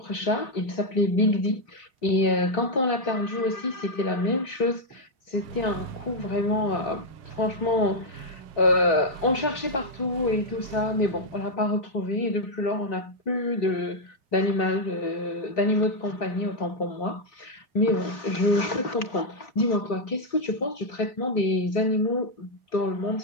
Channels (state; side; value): late; right; 3.7 ms